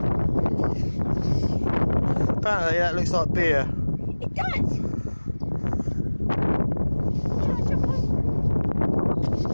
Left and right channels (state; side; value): inverted; both; correlation -1.00